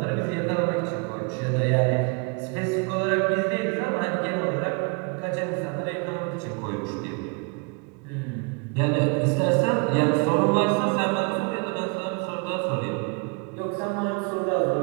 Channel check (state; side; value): quieter; left; 32.9 dB